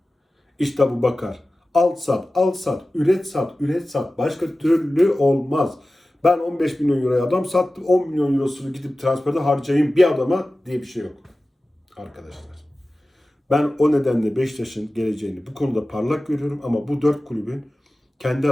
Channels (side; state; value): both; normal; correlation 0.96